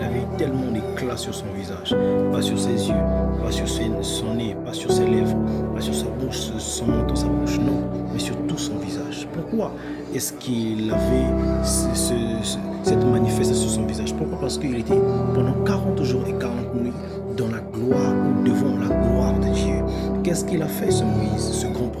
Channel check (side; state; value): both; identical; correlation 1.00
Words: avait tellement d'éclat sur son visage, pas sur ses yeux, pas sur son nez, pas sur ses lèvres, pas sur sa bouche, son nom dans sa bouche, non, mais sur tout son visage. Pourquoi est-ce qu'il avait cette manifestation sur son visage? Pourquoi? Parce qu'il était pendant 40 jours et 40 nuits dans la gloire ou devant la gloire de Dieu. Qu'est-ce qu'il a fait, ce Moïse, ce grand